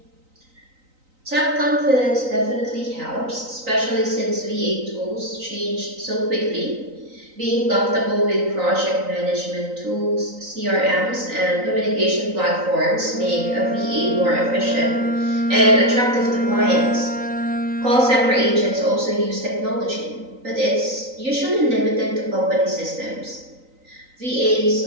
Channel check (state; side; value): late; left; 3.9 ms